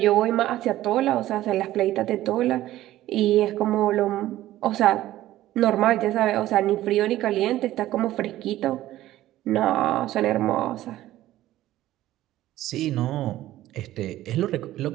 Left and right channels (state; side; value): quieter; left; 14.7 dB